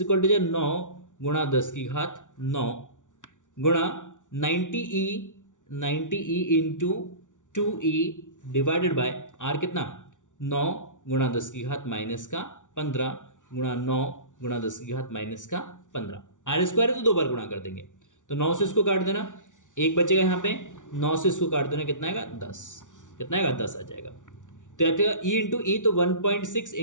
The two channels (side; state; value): right; late; 0.87 ms